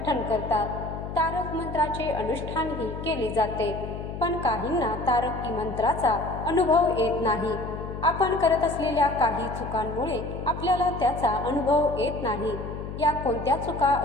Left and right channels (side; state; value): left; noise; hum, 8 dB below the sound